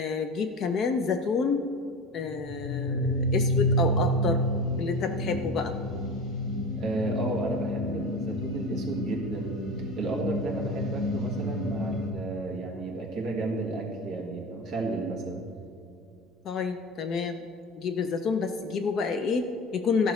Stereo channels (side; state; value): both; normal; correlation 0.31